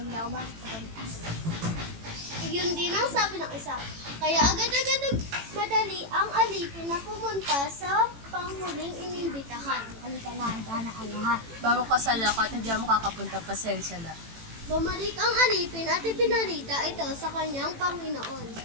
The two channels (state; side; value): late; left; 18 ms